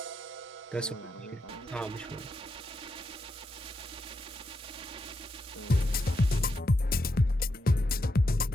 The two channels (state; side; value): normal; both; correlation 0.84